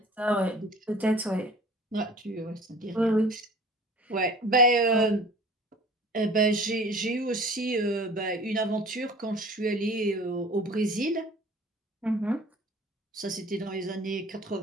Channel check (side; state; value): both; normal; correlation 0.46